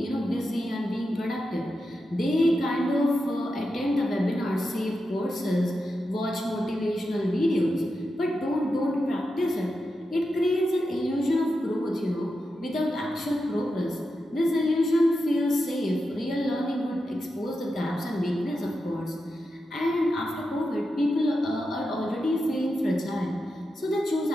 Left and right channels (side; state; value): both; normal; correlation 0.89